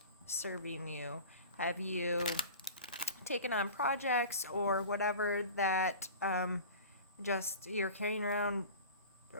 serving you? Have you taken on projects or whatever that just you're carrying around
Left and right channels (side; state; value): both; inverted; correlation -0.37